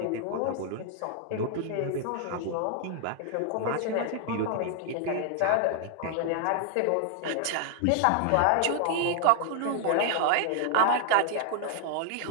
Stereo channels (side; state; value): both; different; correlation 0.00